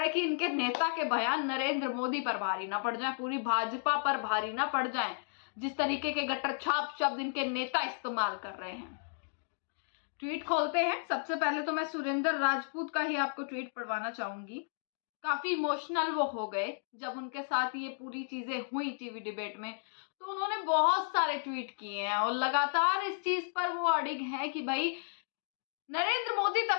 है कि इनके नेता के बयान नरेंद्र मोदी पर भारी ना पड़ जाए, पूरी भाजपा पर भारी ना पड़ जाए, जिस तरीके के गट्टर छाप शब्द इनके नेता इस्तेमाल कर रहे हैं। ट्वीट खोलते हैं। सबसे पहले तो मैं सुरेंद्र राजपूत का ही आपको ट्वीट पढ़वाना चाहूंगी। काफी इमोशनल वो हो गए जब उनके साथ ये पूरी चीजें हुई टीवी डिबेट में, तो उन्होंने बहुत सारे ट्वीट किए हैं और लगातार इस चीज पर वो अड़िग हैं कि भाई नरेंद्र मोदी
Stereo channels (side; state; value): right; silent; digital silence